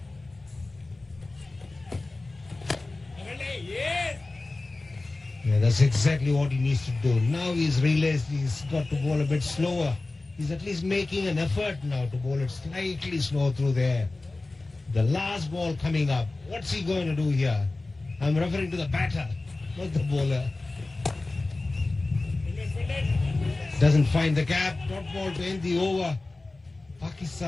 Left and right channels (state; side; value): quieter; right; 3.2 dB